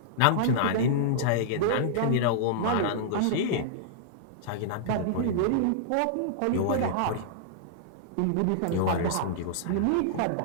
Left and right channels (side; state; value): both; different; correlation -0.02